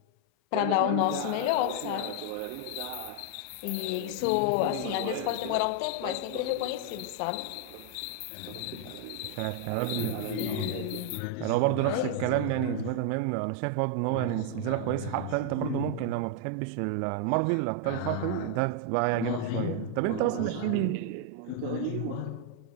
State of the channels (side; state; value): both; different; correlation 0.00